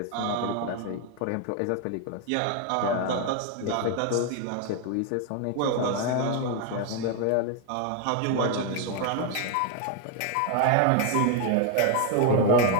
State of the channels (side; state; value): both; different; correlation 0.01